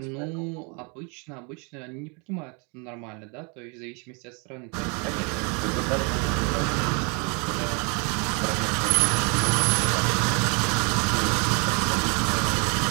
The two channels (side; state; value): left; quieter; 33.3 dB